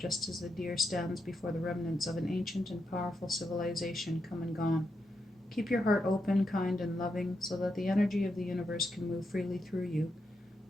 as the deer stands before the remnants of an ancient and powerful civilization come and gone. Keep your heart open, kind, and loving, so that the energy of the universe can move freely through you.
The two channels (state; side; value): normal; both; correlation 0.84